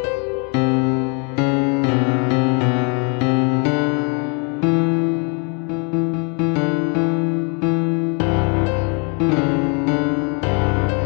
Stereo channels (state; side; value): quieter; right; 34.2 dB